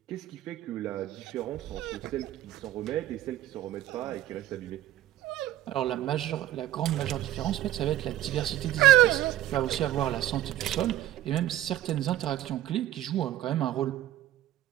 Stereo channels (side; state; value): left; quieter; 14.1 dB